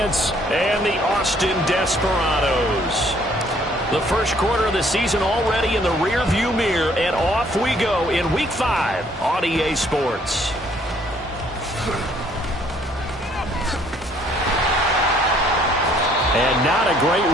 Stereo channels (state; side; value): normal; both; correlation 0.63